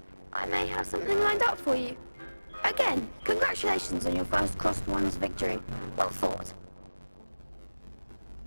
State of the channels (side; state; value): both; inverted; correlation -1.00